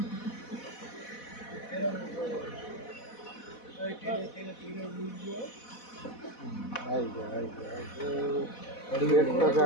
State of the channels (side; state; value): right; late; 4.1 ms